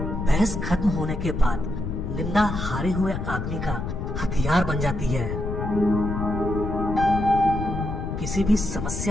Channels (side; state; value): left; noise; rumble, 4 dB below the sound